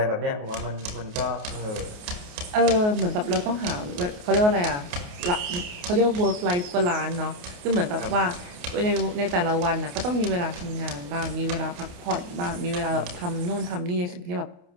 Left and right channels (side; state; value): left; late; 28 ms